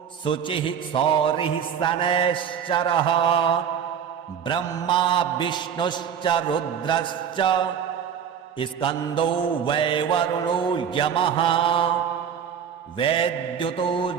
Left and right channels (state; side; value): quieter; left; 8.0 dB